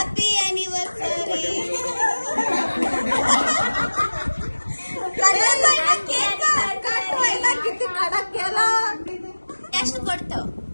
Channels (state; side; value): inverted; both; correlation -1.00